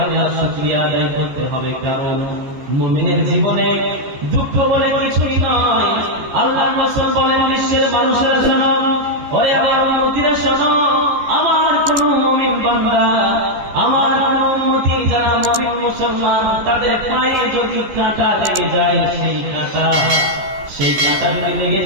আল্লাহর শুকরিয়া আদায় করতে হবে, কারণ মুমিনের জীবনে দুঃখ বলে কিছুই নয়। আল্লাহ রাসূল বলেন বিশ্বের মানুষেরা শোনো, ওরে আমার উম্মতিরা শোনো, আমার কোন মুমিন বান্দা, আমার কোন উম্মতি যারা মুমিন মুসলমান, তাদের পায়ে যদি কাঁটা লেগে যায়, সেই কাঁটা যদি লেগে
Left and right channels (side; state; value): left; late; 14 ms